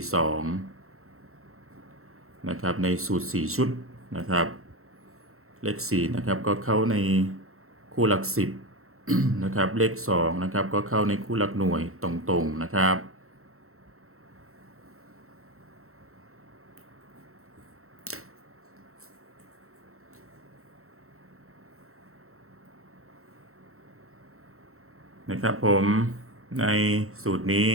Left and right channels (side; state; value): left; late; 0.63 ms